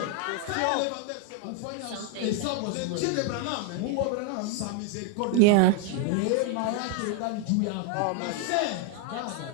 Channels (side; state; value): both; different; correlation 0.00